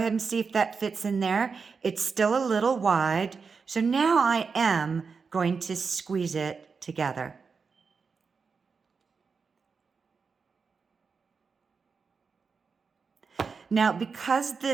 and see if that fits in there. It's still a little wide. So now I am going to squeeze it together. Now, because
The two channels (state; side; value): quieter; left; 5.2 dB